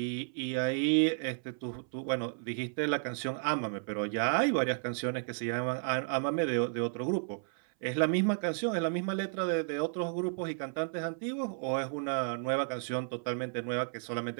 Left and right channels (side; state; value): left; silent; 56 dB below the other